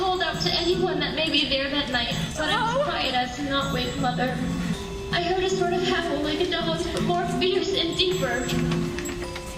out to anyone that may be there that night, but I was quiet as to not wake Mother. I heard a sort of howl like a dog's, but more fierce and deeper.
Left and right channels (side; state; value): both; identical; correlation 1.00